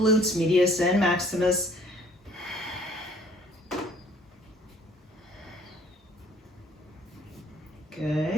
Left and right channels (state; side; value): normal; both; correlation 0.57